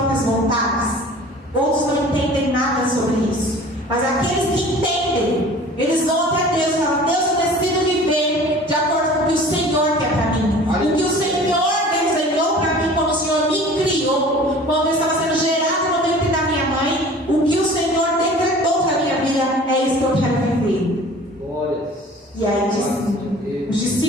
vontades. Outros não entendem nada sobre isso. Mas aqueles que entendem, eles vão até Deus e falam: Deus, eu decido viver de acordo com o que o Senhor quer para mim.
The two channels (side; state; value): both; normal; correlation 0.45